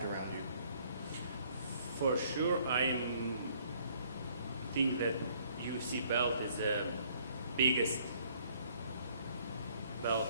around you? For sure, I think that UFC belt is the biggest belt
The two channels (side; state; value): both; inverted; correlation -0.62